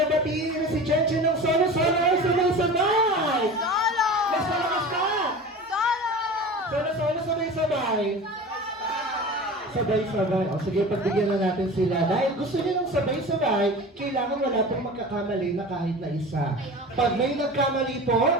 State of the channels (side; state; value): both; normal; correlation 0.35